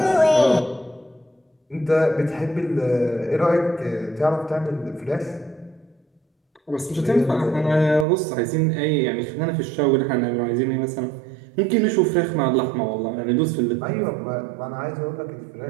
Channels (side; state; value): left; drops out; at 8.1 s